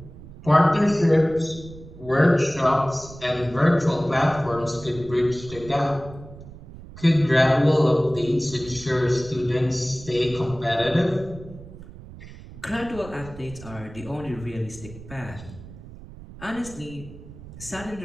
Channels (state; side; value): noise; right; rumble, 16 dB below the sound